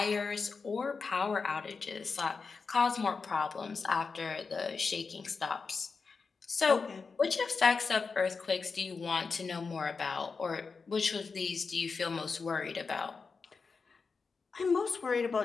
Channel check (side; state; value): right; quieter; 4.8 dB